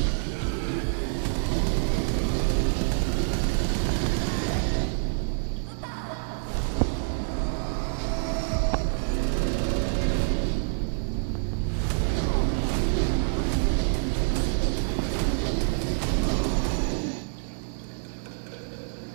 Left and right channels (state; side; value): silent; left; digital silence